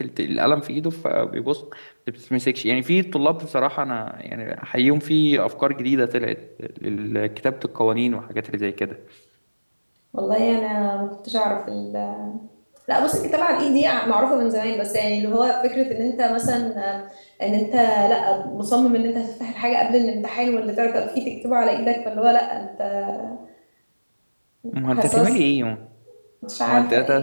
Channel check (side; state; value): both; inverted; correlation -1.00